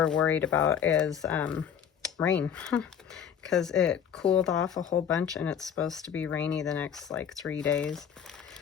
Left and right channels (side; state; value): right; quieter; 8.3 dB